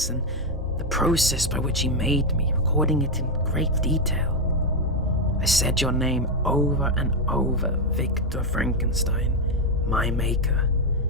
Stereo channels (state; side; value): normal; both; correlation 0.04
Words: and the process by which he made me, recording it in great detail. I said your name over and over, Victor Frankenstein, my maker.